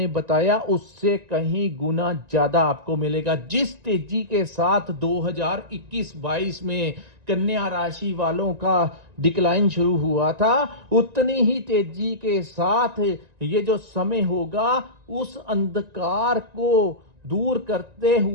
बताया उससे कहीं गुना ज्यादा आपको मिलेगा। जिस तेजी के साथ 2021-22 में कन्या राशि वालों का डिक्लाइन शुरू हुआ था, उतनी ही तेजी के साथ ये जो समय होगा उस अंधकार को दूर करते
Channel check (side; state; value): left; late; 1.9 ms